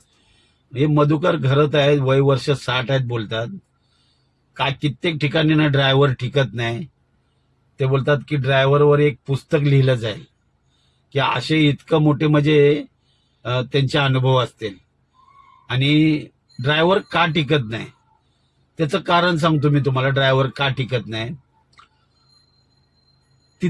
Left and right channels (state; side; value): identical; both; correlation 1.00